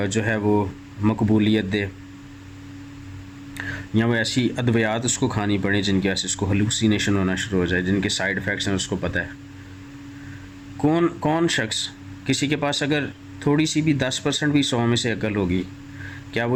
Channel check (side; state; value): both; identical; correlation 1.00